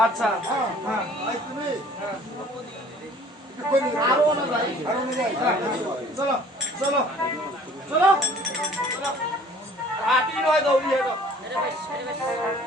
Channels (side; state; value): both; normal; correlation 0.52